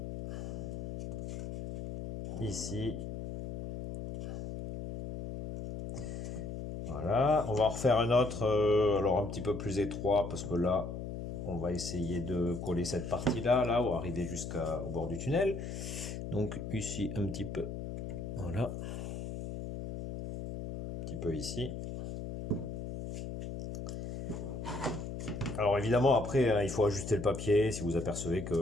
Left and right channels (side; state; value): left; noise; hum, 6 dB below the sound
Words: ici. Voilà, on va en refaire un autre, alors un petit peu plus étroit, parce que là, on va essayer de coller cette partie-là, là, ou arriver jusqu'au bord du tunnel. Donc ici, un petit peu, voilà, un petit peu ici. Alors évidemment, après, hein, il faut ajuster le papier si vous apercevez